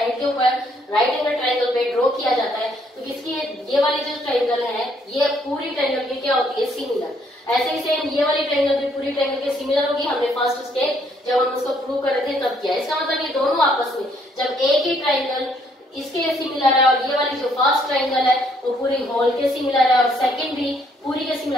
के ऊपर राइट एंगल ट्रायंगल पे ड्रॉ किया जाता है तो इसकी ये वाली जो ट्रायंगल है ये पूरी ट्रायंगल की क्या होती है? सिमिलर। ऐसे ही सेम ये वाली ट्रायंगल भी पूरी ट्रायंगल के सिमिलर होगी। हमने फर्स्ट स्टेप जब हम उसको प्रूव कर रहे थे तब किया। इसका मतलब ये दोनों आपस में जब एक ही ट्रायंगल इसके सिमिलर है और ये वाली जो फर्स्ट ट्रायंगल है वो पूरी होल के सिमिलर है और सेकंड भी पूरी के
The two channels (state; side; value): normal; both; correlation 0.68